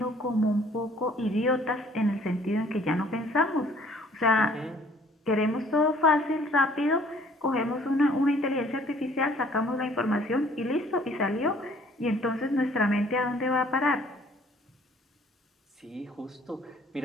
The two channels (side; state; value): both; normal; correlation 0.57